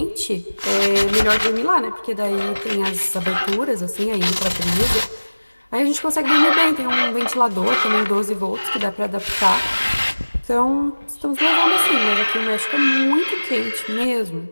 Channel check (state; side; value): inverted; both; correlation -1.00